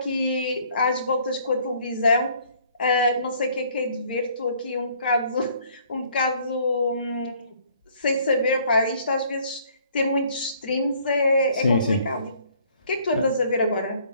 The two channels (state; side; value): inverted; both; correlation -0.60